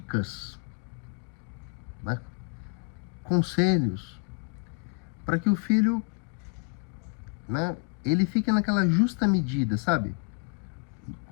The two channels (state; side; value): quieter; right; 35.6 dB